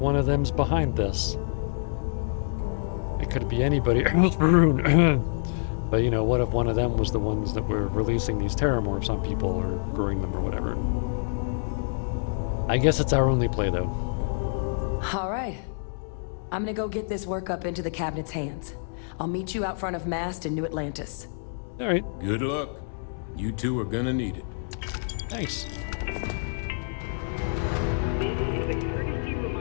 of them's behind this? It could be anybody. But, you know, what if one of them was the ones that were releasing these terramorphs on people or growing them or whatever? I guess it's our only play, though. All right. I'm gonna go get this work up into the cabinet's hands. I'll meet you out front of Mast in New Atlantis. All right. Good luck. You two are gonna need it. Thanks. This is a courtesy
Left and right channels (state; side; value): silent; right; digital silence